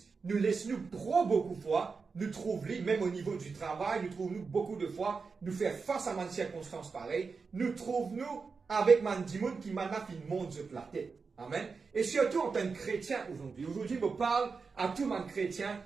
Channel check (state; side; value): quieter; left; 4.9 dB